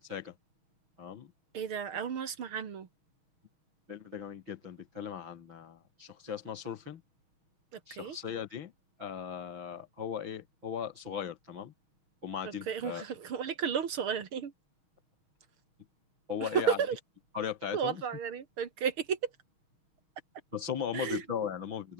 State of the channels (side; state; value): left; late; 6.6 ms